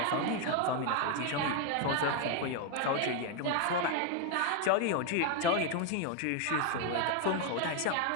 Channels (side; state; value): both; different; correlation 0.01